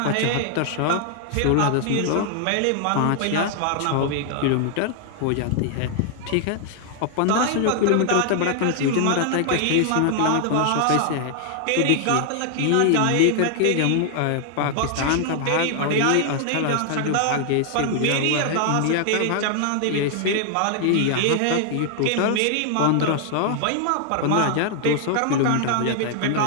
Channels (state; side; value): different; both; correlation 0.00